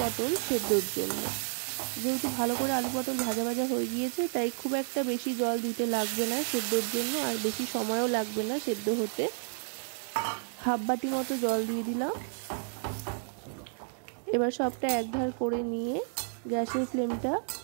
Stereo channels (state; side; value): silent; left; 57 dB below the other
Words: সেদ্ধর জন্য। যেহেতু ভালো করে আলু পটল ভাজা ভাজা হয়ে গিয়েছে তাই খুব একটা বেশি জল দিতে লাগবে না সেদ্ধর জন্য, আর বেশি সময়ও লাগবে না সেদ্ধ হতে। 1/2 বাটি মতো জল দিয়ে দিলাম। এবার সবটা একধার করে নিয়ে গ্যাসের ফ্লেমটা